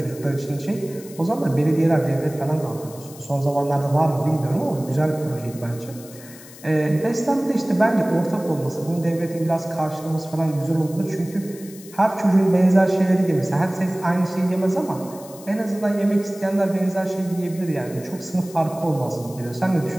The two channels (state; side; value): noise; left; hiss, 19 dB below the sound